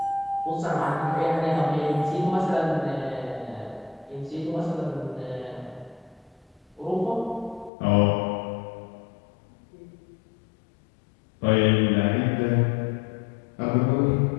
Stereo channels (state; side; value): drops out; right; at 7.7 s